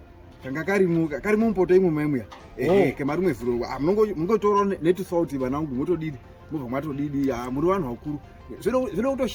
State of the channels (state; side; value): identical; both; correlation 1.00